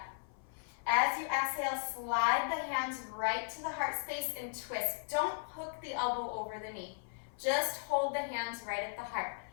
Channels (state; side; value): silent; right; 53 dB below the other